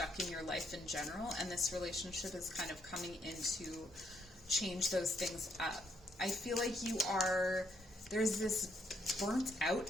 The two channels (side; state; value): both; normal; correlation 0.73